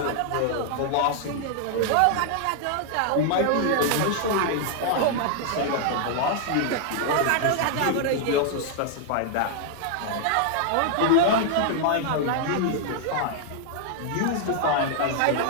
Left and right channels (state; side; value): different; both; correlation 0.00